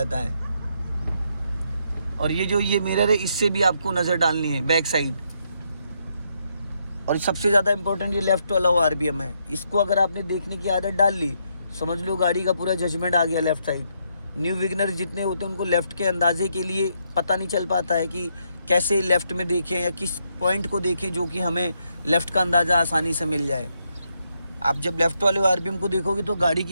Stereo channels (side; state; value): both; inverted; correlation -0.77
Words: है। और ये जो ये मिरर है इससे भी आपको नज़र डालनी है बैक साइड। और सबसे ज़्यादा इंपॉर्टेंट ये लेफ्ट वाला आरबीएम है, इसको अगर आपने देखने की आदत डाल ली समझ लो गाड़ी का पूरा जजमेंट आ गया लेफ्ट साइड। न्यू विगनर जितने होते हैं उनको लेफ़्ट के अंदाजे के लिए पता नहीं चल पाता है कि कैसे लेफ़्ट में देखें या किस पॉइंट को देखें जो कि हमें लेफ़्ट का अंदाज़ा आसानी से मिल जाए। आप जब लेफ़्ट वाले आरबीएम को देखोगे तो गाड़ी